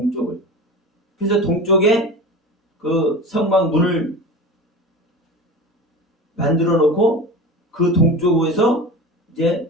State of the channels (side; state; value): both; normal; correlation 0.31